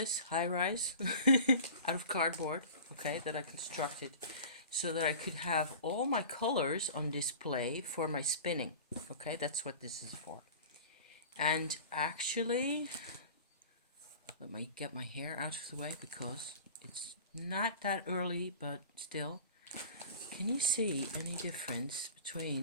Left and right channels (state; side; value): inverted; both; correlation -0.38